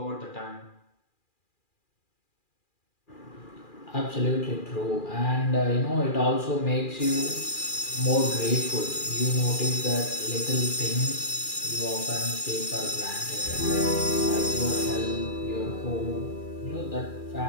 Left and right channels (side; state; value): right; late; 2.4 ms